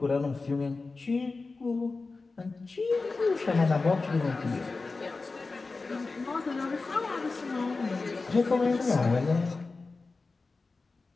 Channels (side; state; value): right; quieter; 3.9 dB